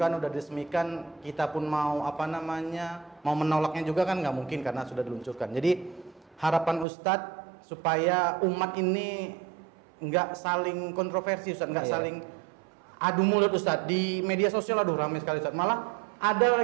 udah diresmikan. Kita pun mau mau menolaknya juga kan nggak mungkin karena sudah diluncurkan. Jadi harapan Ustaz supaya umat ini nggak saling kontroversi Ustaz, nggak saling adu mulut Ustaz. Di media sosial aduh ramai sekali Ustaz. Malah ada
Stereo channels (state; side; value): drops out; left; at 6.9 s